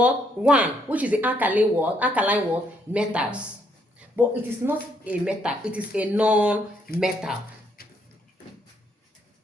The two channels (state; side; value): normal; both; correlation 0.72